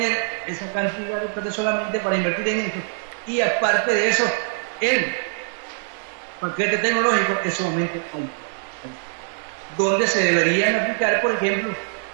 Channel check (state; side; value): silent; left; 63 dB below the other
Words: esa cantidad de plata solamente para invertir en eso? Y aparte de eso, el paquete tecnológico es sumamente alto, donde se deberían aplicar, por ejemplo,